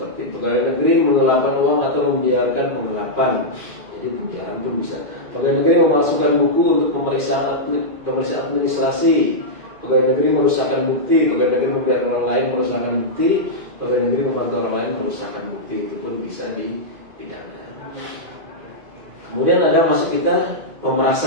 pegawai negeri menggelapkan uang atau membiarkan penggelapan. Jadi penjara pun bisa. Pegawai negeri memasukkan buku untuk pemeriksaan administrasi. Pegawai negeri merusakkan bukti. Pegawai negeri membiarkan orang lain merusakkan bukti. Pegawai negeri membantu orang lain merusakkan bukti. Itu pun bisa dipidana. Kemudian ada masuk kita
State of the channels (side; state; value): left; late; 2.4 ms